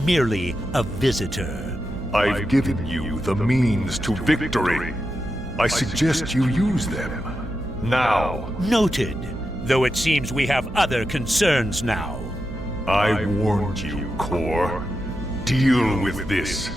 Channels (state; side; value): noise; right; hum, 12 dB below the sound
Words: a visitor. I've given you the means to victory. I suggest you use them. Now. Noted. Though it seems we have other concerns now. I warned you, Core. Deal with this.